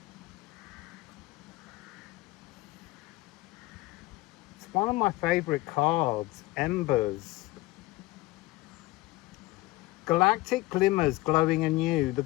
It's one of my favorite cards, Embers. Galactic glimmers glowing anew, the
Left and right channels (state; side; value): quieter; right; 20.1 dB